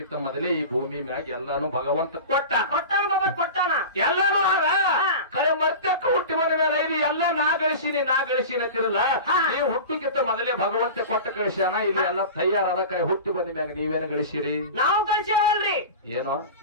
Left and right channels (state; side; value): inverted; both; correlation -0.31